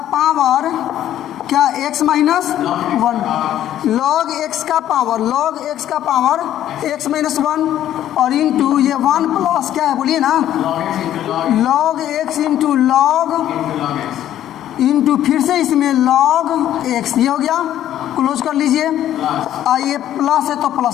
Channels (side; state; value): right; quieter; 11.8 dB